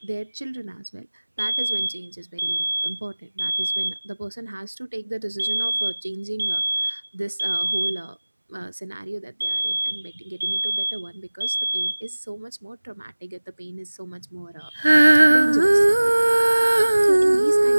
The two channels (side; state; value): both; inverted; correlation -1.00